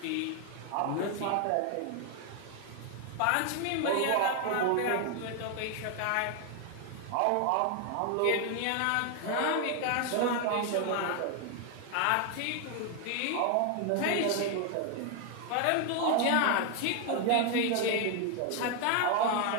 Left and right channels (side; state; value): both; different; correlation 0.00